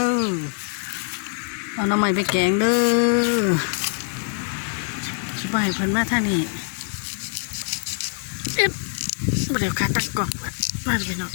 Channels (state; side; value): silent; right; 56 dB below the other